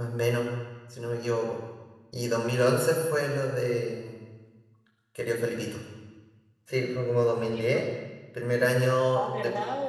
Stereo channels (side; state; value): both; identical; correlation 1.00